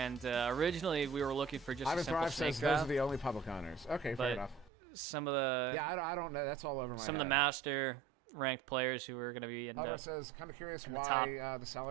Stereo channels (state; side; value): drops out; left; at 4.7 s